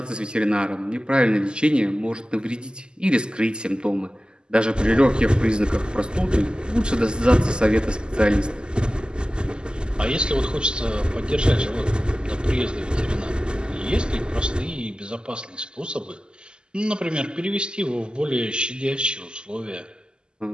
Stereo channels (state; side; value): late; left; 0.047 ms